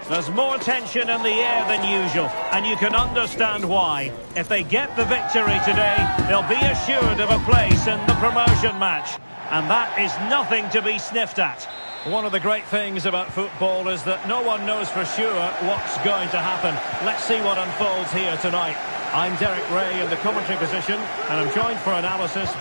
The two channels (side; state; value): both; inverted; correlation -1.00